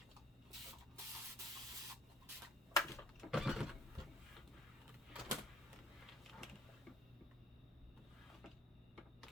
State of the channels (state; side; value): normal; both; correlation 0.52